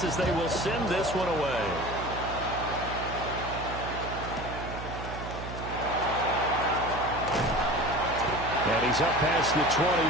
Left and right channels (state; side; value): noise; right; hum, 9 dB below the sound